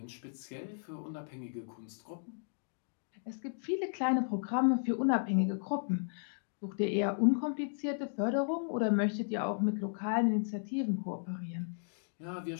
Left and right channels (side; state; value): right; silent; digital silence